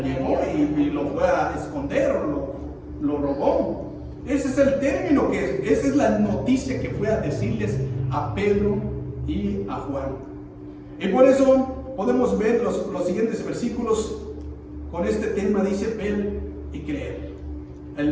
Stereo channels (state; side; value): identical; both; correlation 1.00